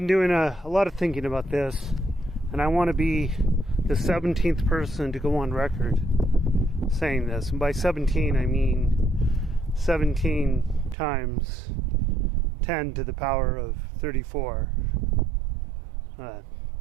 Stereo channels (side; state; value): left; drops out; at 11.0 s